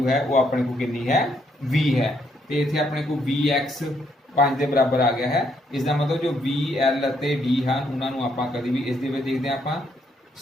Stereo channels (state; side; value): normal; both; correlation 0.73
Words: ਹੈ ਉਹ ਆਪਣੇ ਕੋ ਕਿੰਨੀ ਹੈ, V ਹੈ, ਤੇ ਇੱਥੇ ਆਪਣੇ ਕੋ VX 5 ਦੇ ਬਰਾਬਰ ਆ ਗਿਆ ਹੈ। ਇਸ ਦਾ ਮਤਲਬ ਜੋ VL ਅਤੇ D ਹਨ ਉਹਨਾਂ ਨੂੰ ਆਪਾਂ ਕਦੀ ਵੀ ਇਸ ਦੇ ਵਿੱਚ ਦੇਖਦੇ ਹਾਂ ਆਪਾਂ